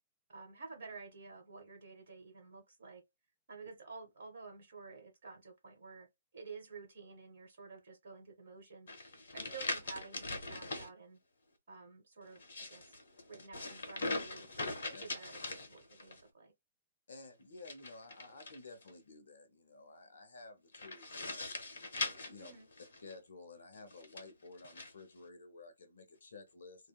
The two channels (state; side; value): inverted; both; correlation -0.73